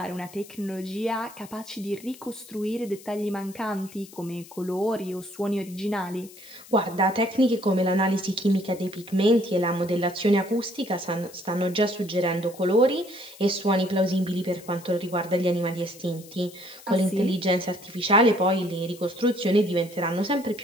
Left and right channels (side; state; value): left; noise; hiss, 20 dB below the sound